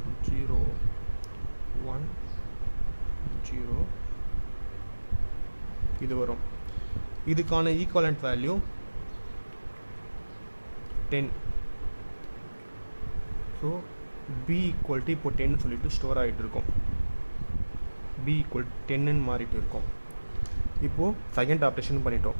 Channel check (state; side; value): inverted; both; correlation -1.00